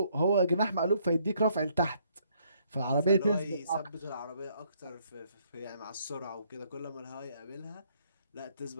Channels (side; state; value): both; inverted; correlation -0.68